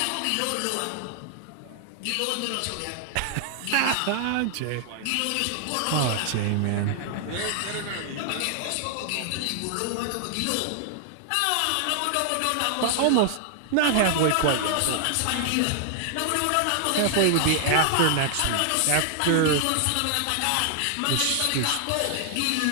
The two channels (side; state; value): both; different; correlation 0.00